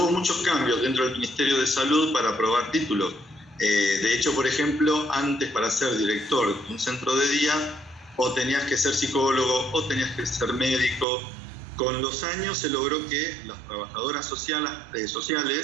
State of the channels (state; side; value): drops out; left; at 11.1 s